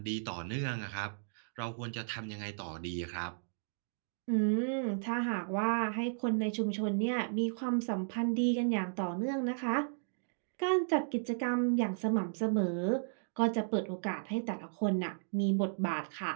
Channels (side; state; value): left; silent; digital silence